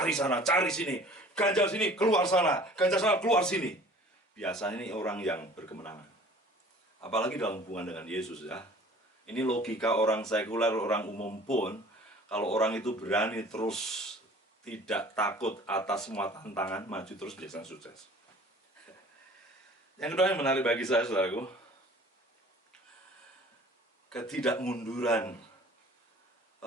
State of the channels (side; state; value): both; normal; correlation 0.48